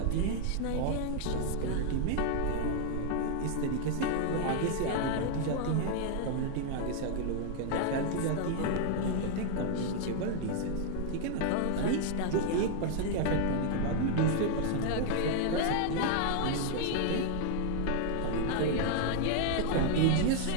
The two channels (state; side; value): different; both; correlation 0.00